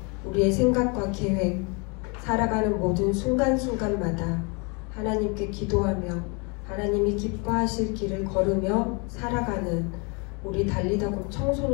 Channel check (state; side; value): quieter; right; 32.1 dB